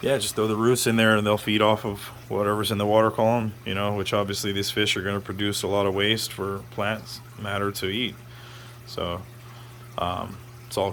throw the roots in there and they'll feed off of whatever's in the water column, you know, which obviously these fish are going to produce a lot of waste for plants matter to eat. So it's all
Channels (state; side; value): identical; both; correlation 1.00